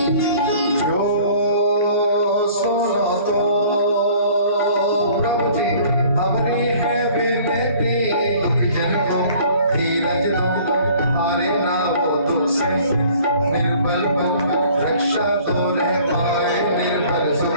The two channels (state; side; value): inverted; both; correlation -0.52